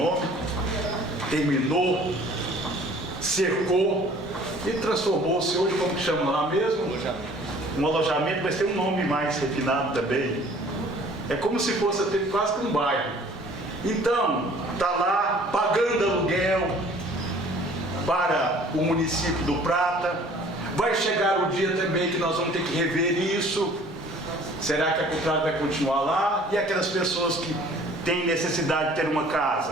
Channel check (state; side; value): normal; both; correlation 0.52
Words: terminou, cercou e transformou-se hoje, como que chama lá mesmo? Um alojamento, mas tem um nome mais refinado também. É como se fosse até quase que um bairro. Então, está lá pagando aluguel para o município do Prata. Vai chegar o dia também que nós vamos ter que rever isso. Será que a Cultrale vai continuar lá? E aquelas pessoas que têm necessidade de ter uma